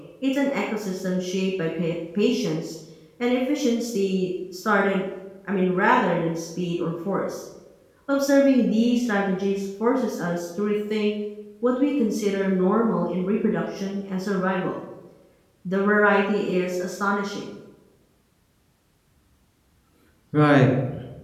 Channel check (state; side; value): identical; both; correlation 1.00